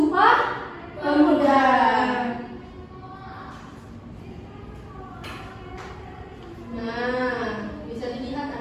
Pemuda? Nah, bisa dilihat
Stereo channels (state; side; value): identical; both; correlation 1.00